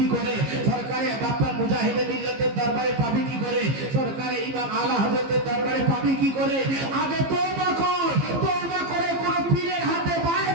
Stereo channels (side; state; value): left; late; 15 ms